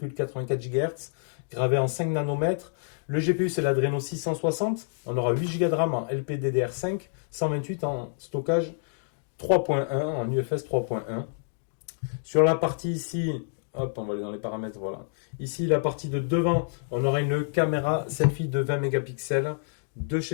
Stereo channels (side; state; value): right; silent; digital silence